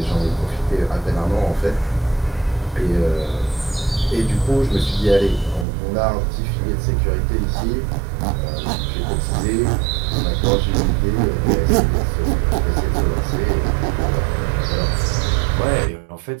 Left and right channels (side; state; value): left; drops out; at 5.7 s